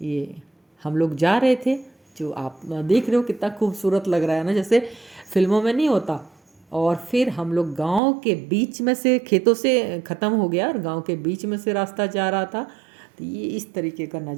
हम लोग जा रहे थे। जो आप देख रहे हो कितना खूबसूरत लग रहा है ना, जैसे फिल्मों में नहीं होता। और फिर हम लोग गांव के बीच में से, खेतों से ख़त्म हो गया और गांव के बीच में से रास्ता जा रहा था। तो ये इस तरीके का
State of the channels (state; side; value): drops out; left; at 8.0 s